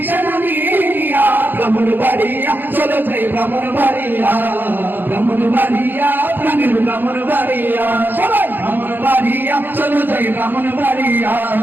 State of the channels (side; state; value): left; late; 0.092 ms